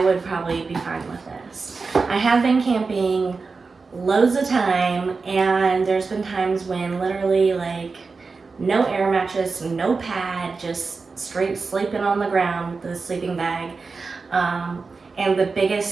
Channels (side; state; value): left; quieter; 4.4 dB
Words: would probably be fine with this. I have been camping loads of time, and there's been times when literally like no air mattress, no pad, just straight sleeping on the ground with the sleeping bag. And the